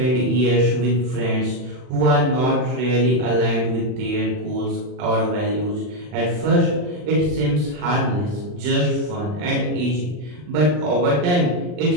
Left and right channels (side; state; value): left; late; 40 ms